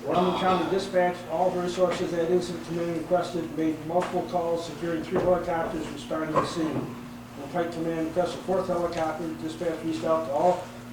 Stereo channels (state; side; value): identical; both; correlation 1.00